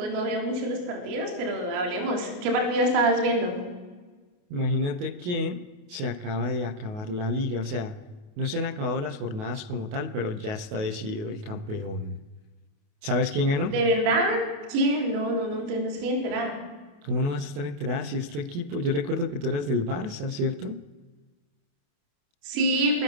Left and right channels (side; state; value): left; late; 28 ms